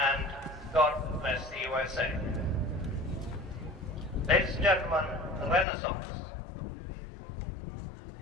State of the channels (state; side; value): drops out; right; at 5.7 s